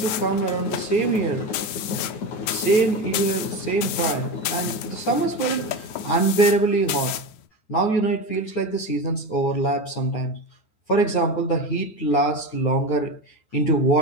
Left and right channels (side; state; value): right; late; 9.5 ms